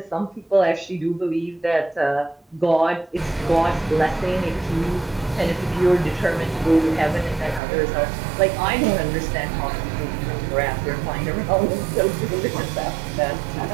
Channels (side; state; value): left; drops out; at 7.6 s